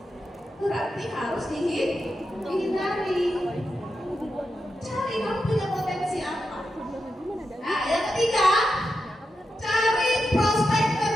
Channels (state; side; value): normal; both; correlation 0.88